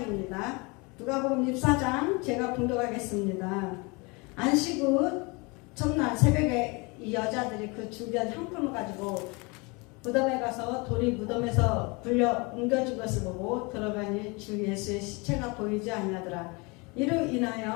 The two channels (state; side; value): quieter; right; 28.2 dB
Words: 누가복음 24장 제가 봉독하겠습니다. 안식 후 첫날 새벽에 이 여자들이 그 준비한 향품을 가지고 무덤에 가서 돌이 무덤에서 불려 옮겨진 것을 보고 들어가니 주 예수의 시체가 보이지 아니하더라. 이로